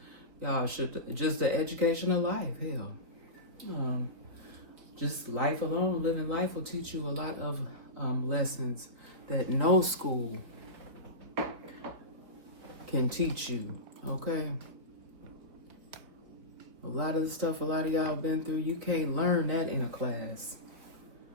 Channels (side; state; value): left; late; 4.5 ms